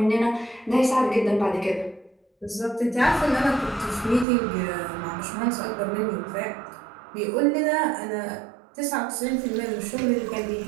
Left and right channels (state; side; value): drops out; left; at 4.2 s